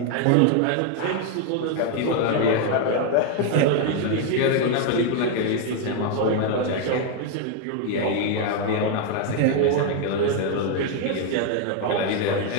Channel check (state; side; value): different; both; correlation 0.01